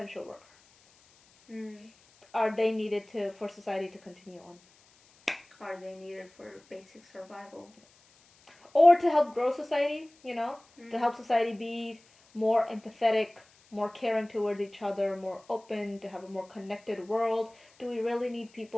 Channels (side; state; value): left; noise; hiss, 30 dB below the sound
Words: worker? Are they needed for society to continue on? Are they needed for basic survival? Or to help grow society, to help society be more empathetic, more caring towards each other, more open, to have a more connected world. Do we really need